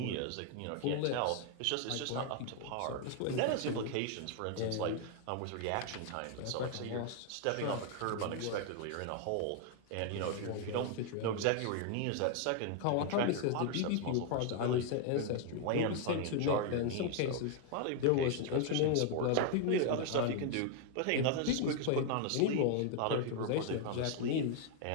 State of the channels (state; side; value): different; both; correlation 0.00